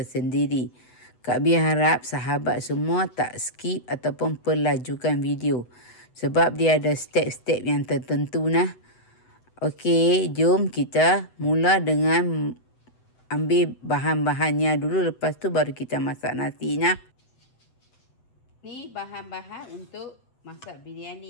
Kak Bi harap sahabat semua tak skip ataupun pelajukan video. Sebab dia ada step-step yang tertentu nah. Okey, jom kita mula dengan ambil bahan-bahannya dulu, lepas tu baru kita masak nasinya. Ni bahan-bahan untuk masak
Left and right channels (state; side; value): late; right; 8.0 ms